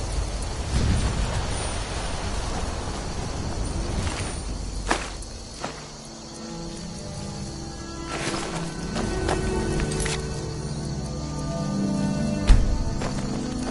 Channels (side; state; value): both; identical; correlation 1.00